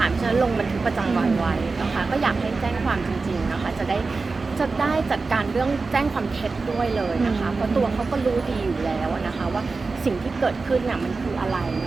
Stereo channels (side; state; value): left; quieter; 4.0 dB